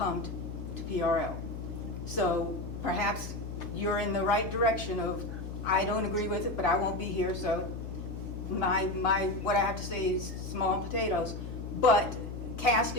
to PRL. So perhaps you're in the right direction of, I don't agree with it, but I won't be here, so what I have to say is small potatoes. But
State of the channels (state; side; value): noise; left; hum, 8 dB below the sound